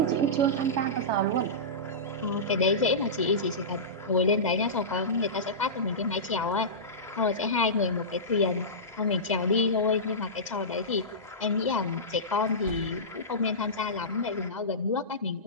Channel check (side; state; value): both; normal; correlation -0.19